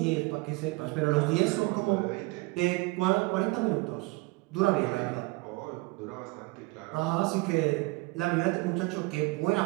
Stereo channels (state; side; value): quieter; left; 25.0 dB